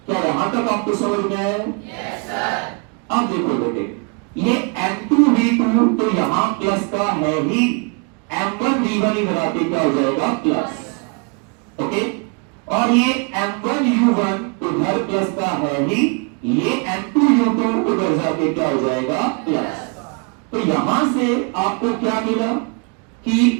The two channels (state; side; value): quieter; left; 34.2 dB